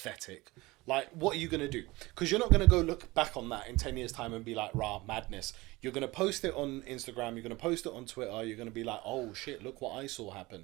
Like, what are you going to do? Because you're not going to go look back on that in 10 years' time and be like, rah, madness. You're going to post it on Instagram, you're going to post it on Twitter, you're going to be like, oh shit, look what I saw happen.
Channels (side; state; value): left; quieter; 21.3 dB